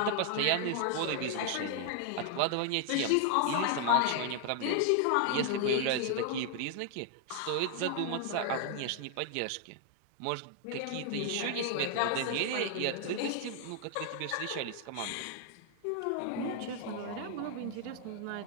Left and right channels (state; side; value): different; both; correlation 0.00